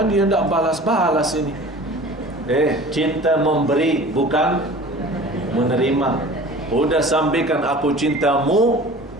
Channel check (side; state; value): both; normal; correlation 0.42